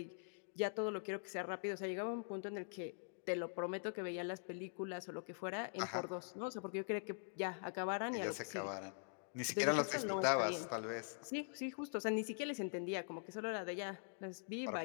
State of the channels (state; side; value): silent; right; digital silence